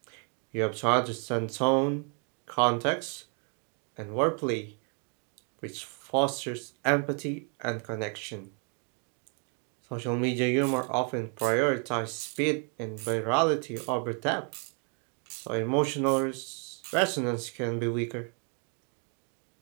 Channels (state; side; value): quieter; left; 39.9 dB